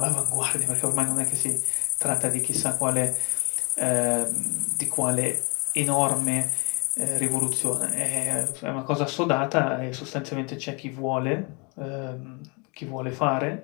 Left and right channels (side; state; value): right; quieter; 31.4 dB